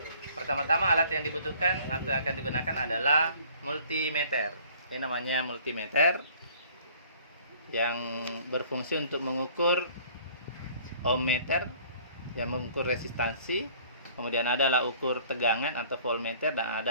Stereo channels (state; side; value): inverted; both; correlation -0.54